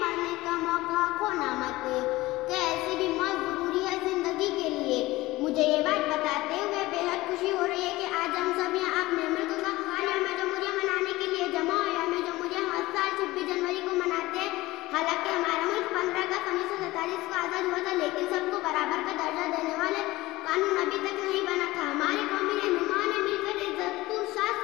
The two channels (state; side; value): quieter; right; 19.0 dB